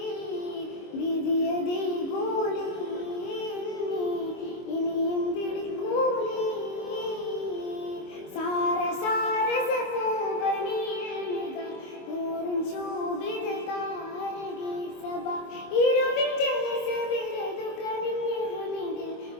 വിധിയതേ കൂലി ഇനിയും വിളിക്കൂലി സാര സാര സപൂവനിൽനിക നൂറുൻ ശോഭിത താരകേ സബ ഇരുവിന്റെ സബിലതു കനിഞ്ഞ ഹമിദിൽ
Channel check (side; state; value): right; late; 25 ms